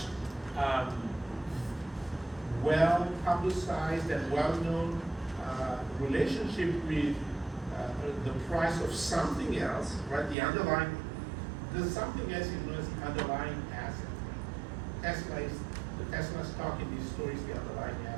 well publicized and well-known relationship with the price of something else, right? The underlying, the something else is known as the underlying asset. The Tesla stock in this story is the underlying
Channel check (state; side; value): drops out; left; at 10.4 s